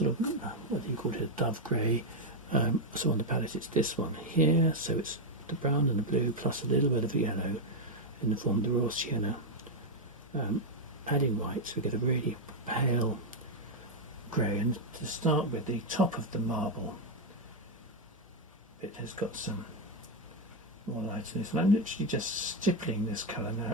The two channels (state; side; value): normal; both; correlation 0.03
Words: of, what do you call it, a dove grey. So on the palette it's this one here. So it's the brown and the blue plus a little bit of yellow in the form of the raw sienna. Adding white, so we get a really pale grey. And to start with, the top of the marble bit has got some more light in this. And I'm literally just stippling this colour